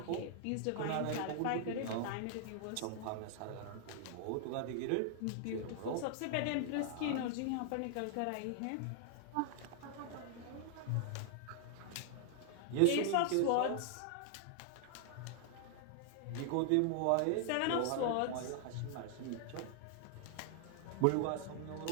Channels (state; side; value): different; both; correlation 0.00